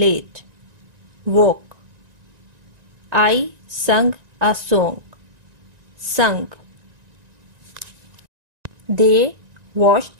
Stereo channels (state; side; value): late; left; 1.9 ms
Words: Woke. I sung a song. Sung. They